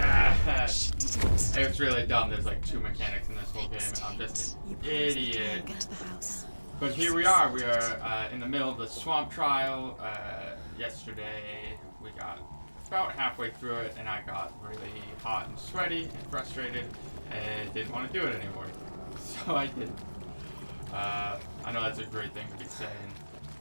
She didn't. It's really dumb. There's like 2 mechanics in this whole game, and I'm just an idiot. Get to the house. But here we are. We are in the middle of the swamp trial. Yesterday, we got about halfway through it, and I got really hot and sweaty and frustrated and didn't want to do it anymore. So I didn't. I know that's a great thing to be saying,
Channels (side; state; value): both; inverted; correlation -1.00